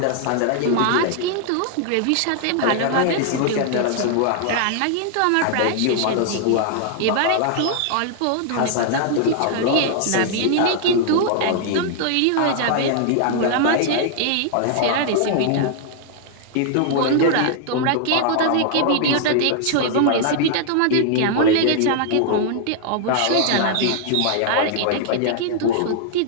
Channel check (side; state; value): both; different; correlation -0.01